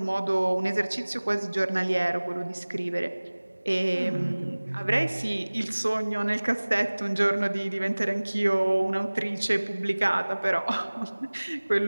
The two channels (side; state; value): both; inverted; correlation -1.00